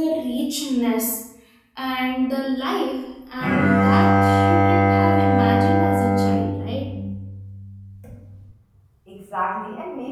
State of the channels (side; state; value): both; identical; correlation 1.00